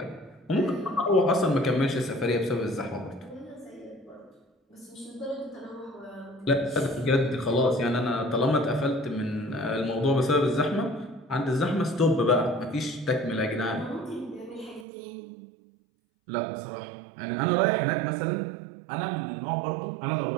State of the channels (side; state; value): left; drops out; at 14.9 s